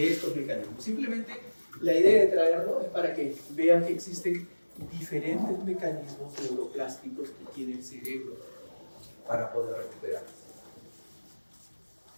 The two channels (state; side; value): inverted; both; correlation -1.00